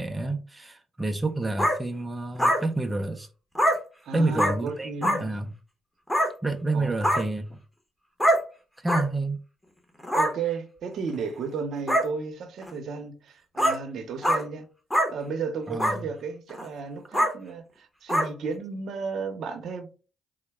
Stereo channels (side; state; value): both; normal; correlation 0.81